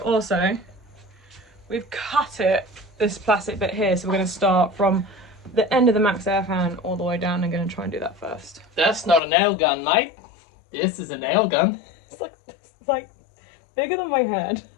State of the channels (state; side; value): drops out; right; at 9.2 s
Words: we've cut it, this plastic bit here, so we're going to start from the end of the max air fan all the way down. I'm going to try and do that first. That's not a nail gun, mate. This is a nail gun. It's like bigger than my head.